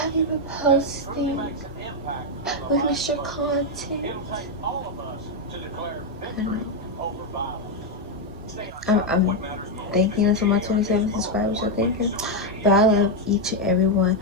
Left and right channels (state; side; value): normal; both; correlation 0.03